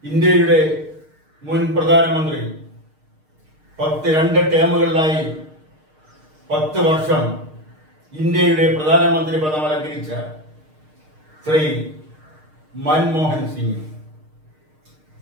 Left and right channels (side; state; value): left; late; 6.5 ms